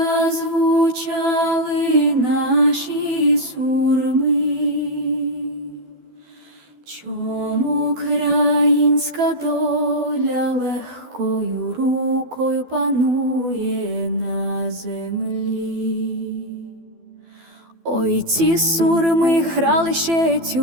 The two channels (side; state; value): left; late; 12 ms